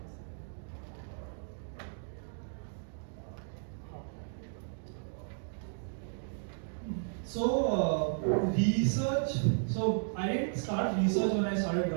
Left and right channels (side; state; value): left; silent; digital silence